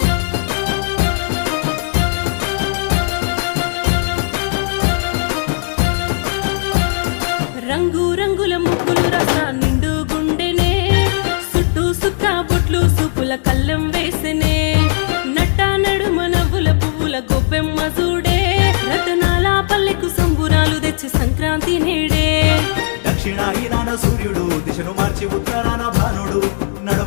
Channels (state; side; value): silent; right; digital silence